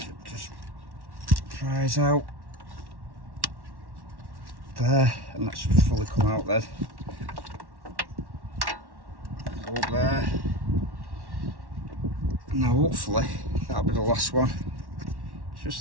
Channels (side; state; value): left; late; 1.1 ms